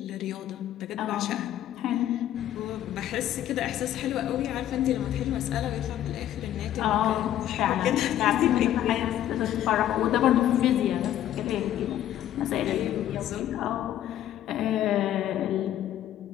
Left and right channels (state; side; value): quieter; right; 12.0 dB